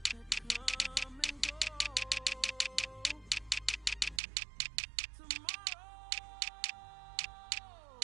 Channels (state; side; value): drops out; left; at 4.2 s